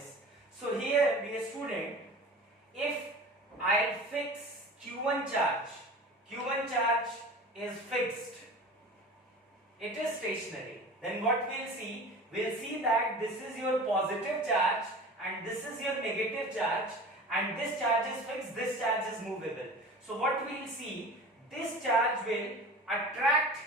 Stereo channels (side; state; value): both; normal; correlation 0.38